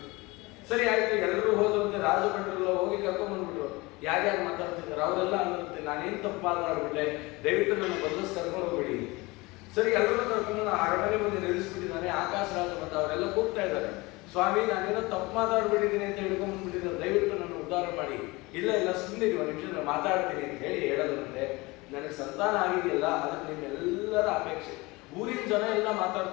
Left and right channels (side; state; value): right; quieter; 23.3 dB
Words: ಸರಿ ಆಯ್ತು, ಎಲ್ಲರೂ ಹೋದಂತೆ ರಾಜಭಟ್ರೆಲ್ಲ ಹೋಗಿ ಕರ್ಕೊಂಡ್ ಬಂದ್ಬಿಟ್ರು. ಯಾರ್ಯಾರು ಮಾತಾಡ್ತಿದ್ದಾರೆ ಅವರೆಲ್ಲ ಅನ್ನಿರುತ್ತೆ ನಾನೇನು ತಪ್ಪಾಗ್ಬಿಟ್ಟೆ, ದಯವಿಟ್ಟು ನನ್ನ ಬಂದಸ್ ಕರ್ಕೊಂಡು ಹೋಗ್ಬೇಡಿ. ಸರಿ, ಎಲ್ಲರೂ ಕರ್ಕೊಂಡು ಅರಮನೆ ಮುಂದೆ ನಿಲ್ಲಿಸ್ಬಿಟ್ಟಿದ್ದಾನೆ. ಆಕಾಶ ರಾಜ ಬಂದ ಅವರೆಲ್ಲ ಕೂಗ್ತಾ ಇದ್ದಾರೆ, ಸ್ವಾಮಿ ನಾನೇನೋ ತಪ್ಪು ಮಾತಾಡ್ಬಿಟ್ಟಿದ್ದೀನಿ ಅಂತ ಹಿಡ್ಕೊಂಡ್ಬಿಟ್ಟಿದ್ದಾರೆ, ದಯವಿಟ್ಟು ನನ್ನ ಉದ್ಧಾರ ಮಾಡಿ. ಇಲ್ಲ ಇಲ್ಲ ಸುಮ್ಮನೆ ಒಂದು ನಿಮಿಷ ನಾನು ಮಾತಾಡ್ತೀನಿ ಅಂತ ಹೇಳಿ ಹೇಳೋದಂತೆ, ನನಗೆ ಸಂತಾನ ಆಗಿದೆಯಲ್ಲ ಅದಕ್ಕೆ ನಿಮ್ಮೆಲ್ಲರ ಅಪೇಕ್ಷೆ. ಊರಿನ ಜನ ಎಲ್ಲ